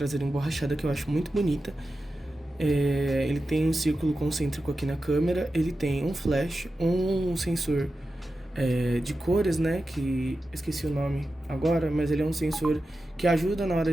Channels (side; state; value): both; normal; correlation 0.92